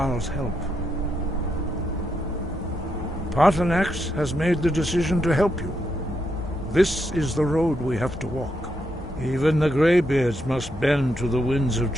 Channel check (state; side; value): normal; both; correlation 0.81